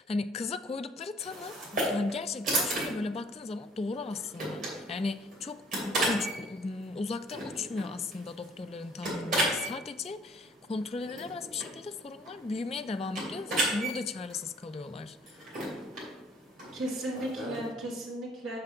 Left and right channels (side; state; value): both; normal; correlation 0.57